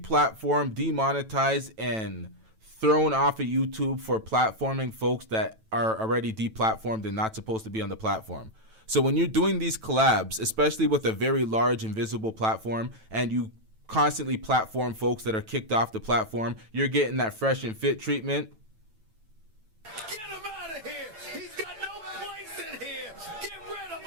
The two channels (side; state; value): left; late; 9.1 ms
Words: demonetized, and thrown off of YouTube for platforming folks that are already deplatformed and not supposed to be on the platform. So when you're doing these collabs, especially with a very large and visible platform, and you constantly platform folks that are kicked off the platform, you're getting that fresh and fit treatment. Get him out of here. He's got no place in here. Get rid of